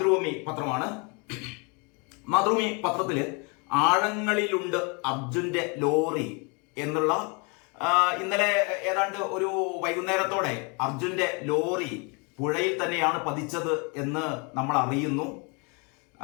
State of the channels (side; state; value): right; quieter; 32.3 dB